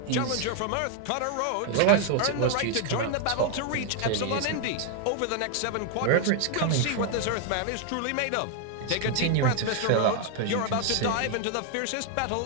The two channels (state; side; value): different; both; correlation 0.00